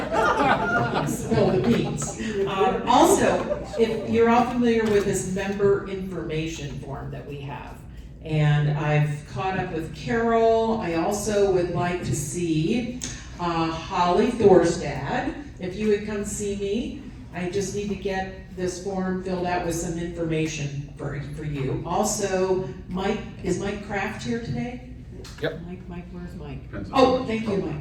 spill the beans. Also, if you're all familiar with this member information form that we have, and I've caught up with Carol. I also would like to see Holly Thorstad. If you would come see me, I just need to get this form filled out with some information for you. Also, Mike, is Mike Kraft here today? Yep. Mike, where's Mike? Oh, thank you,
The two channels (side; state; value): both; identical; correlation 1.00